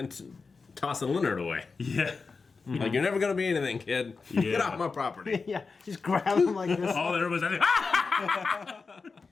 tossing Leonard away. Yeah. Like, you're never going to be anything, kid. Get Yeah. off my property. Yeah, just grab him like this. All there was, I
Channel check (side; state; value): right; quieter; 4.6 dB